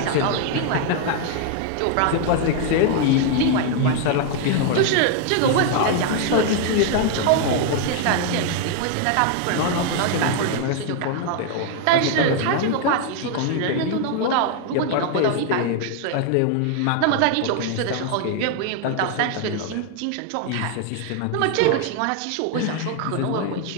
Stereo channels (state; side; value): different; both; correlation 0.00